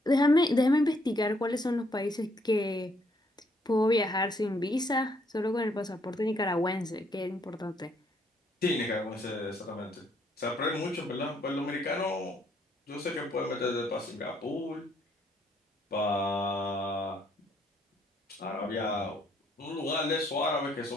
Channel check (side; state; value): both; normal; correlation 0.69